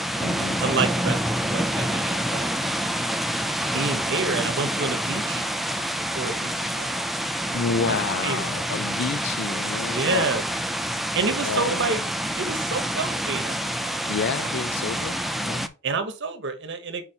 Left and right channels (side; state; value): both; normal; correlation 0.51